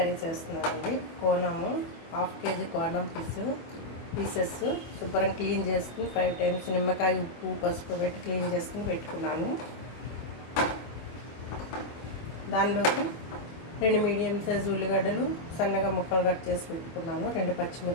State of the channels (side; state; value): right; late; 24 ms